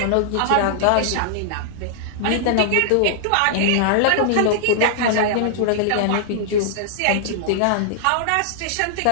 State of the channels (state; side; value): different; both; correlation -0.01